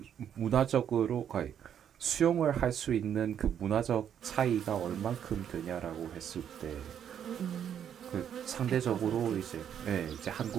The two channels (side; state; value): left; quieter; 9.0 dB